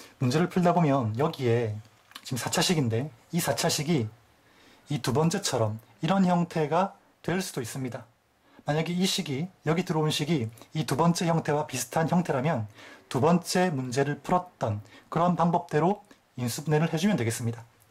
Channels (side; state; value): both; identical; correlation 1.00